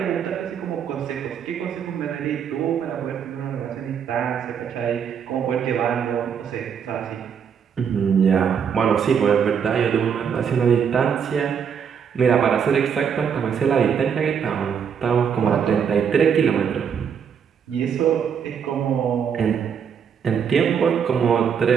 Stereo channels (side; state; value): left; quieter; 7.4 dB